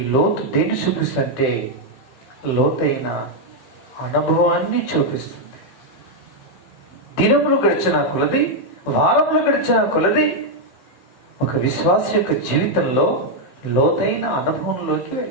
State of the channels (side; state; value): right; late; 16 ms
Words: లోతు దేన్ని చూపిస్తుంటే లోతైన అనుభవాన్ని చూపిస్తుంది. దినములు గడిచిన కొలది, వారములు గడిచిన కొలది ఒక విశ్వాస యొక్క జీవితంలో లోతైన అనుభవంలోకి